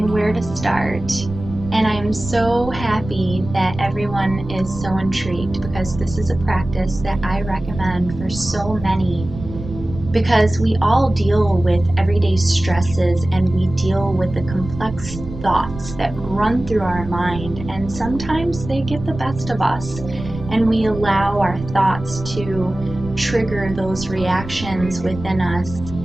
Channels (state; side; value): noise; right; rumble, 11 dB below the sound